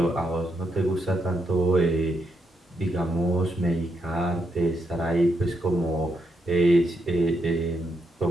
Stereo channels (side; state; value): both; normal; correlation 0.80